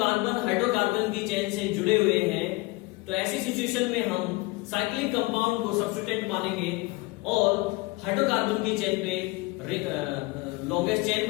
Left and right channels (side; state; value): right; quieter; 23.1 dB